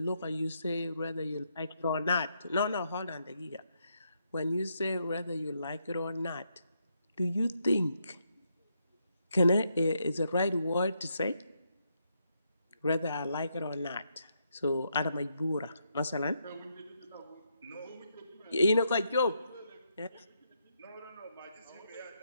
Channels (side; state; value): both; inverted; correlation -0.79